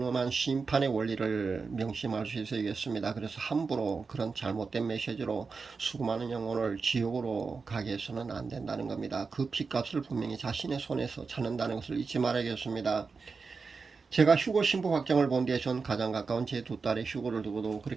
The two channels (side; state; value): left; quieter; 4.8 dB